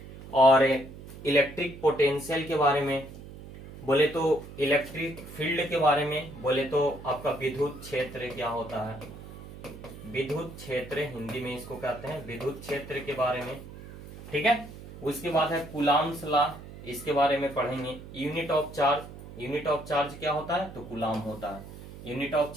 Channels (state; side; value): noise; right; hum, 15 dB below the sound